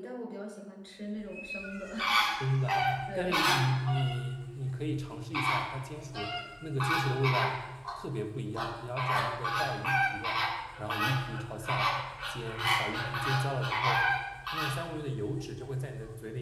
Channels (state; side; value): identical; both; correlation 1.00